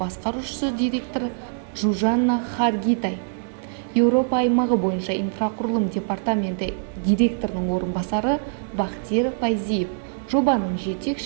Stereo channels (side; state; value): left; silent; 62 dB below the other